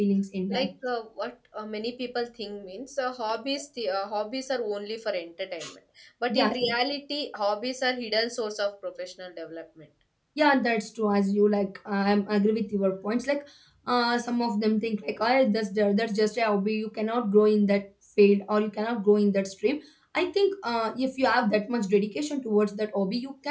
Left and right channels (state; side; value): identical; both; correlation 1.00